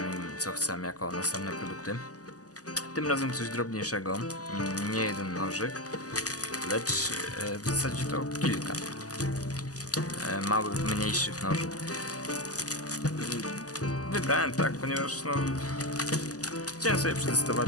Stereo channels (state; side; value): late; right; 0.67 ms